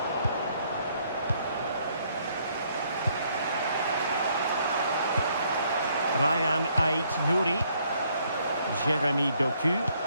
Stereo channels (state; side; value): inverted; both; correlation -0.68